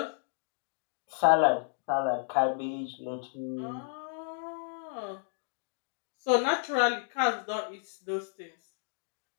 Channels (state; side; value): silent; right; digital silence